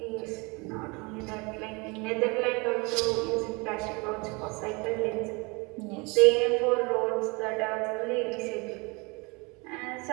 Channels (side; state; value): left; quieter; 28.1 dB